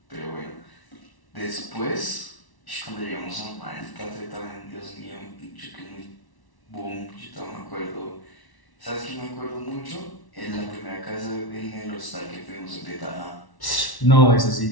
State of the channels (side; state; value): right; late; 1.1 ms